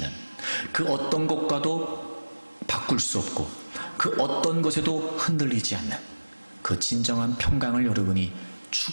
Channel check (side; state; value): both; inverted; correlation -1.00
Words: 그 어떤 것과도 바꿀 수 없고 그 어떤 것에도 흔들리지 않는 그 진정한 평강을 여러분이